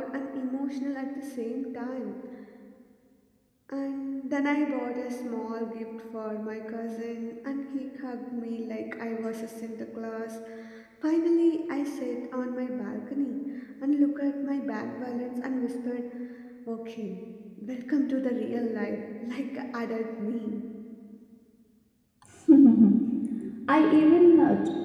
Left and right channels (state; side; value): identical; both; correlation 1.00